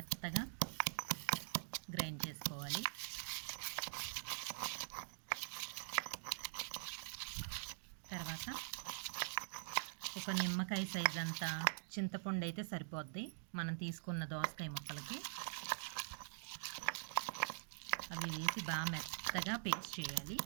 గ్రైండ్ చేసుకోవాలి. తర్వాత ఒక నిమ్మకాయ సైజ్ అంతా చింతపండు అయితే సరిపోద్ది మనం తీసుకున్న దోసకాయ ముక్కలకి. అవి వేసి బాగా మెత్తగా పేస్ట్ చేయాలి.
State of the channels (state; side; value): silent; left; digital silence